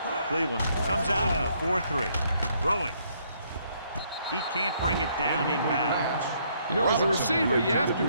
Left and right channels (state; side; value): inverted; both; correlation -0.69